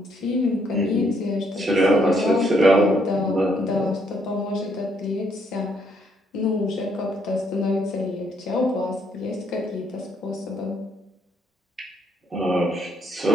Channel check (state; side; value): normal; both; correlation 0.71